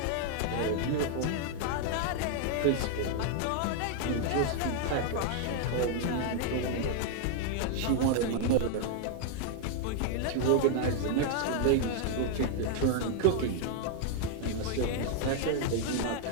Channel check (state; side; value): different; both; correlation 0.00